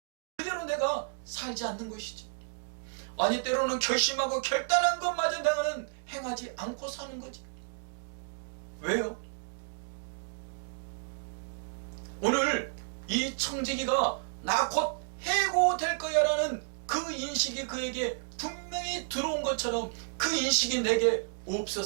그대로 내가 살지 않는 것이지? 아니 때로는 결심하고 결단한 것마저 내가는 행하지 않고 사는 거지. 왜요? 오늘 이 청지기가 나 곧 해고될 거야 라는 그 인식이 그에게 분명히 들어온 것처럼 그 인식이 내게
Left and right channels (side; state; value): left; silent; digital silence